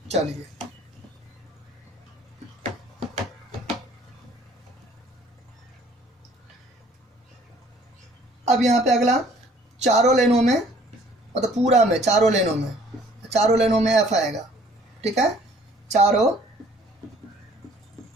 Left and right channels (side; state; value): both; normal; correlation 0.57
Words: चलिए अब यहाँ पे अगला, चारों लाइनों में, मतलब पूरा में चारों लाइनों में एफ आएगा, ठीक है। चारों